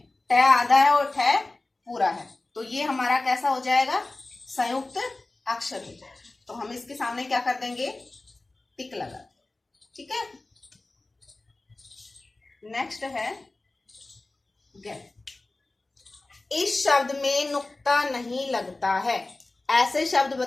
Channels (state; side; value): quieter; right; 3.1 dB